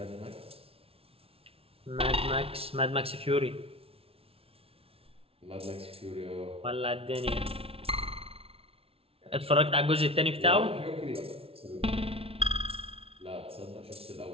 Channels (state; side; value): late; left; 0.27 ms